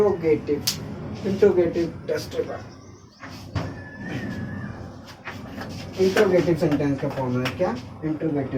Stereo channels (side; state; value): both; identical; correlation 1.00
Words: interrogative test paper. Interrogative sentence का फॉर्मूला क्या,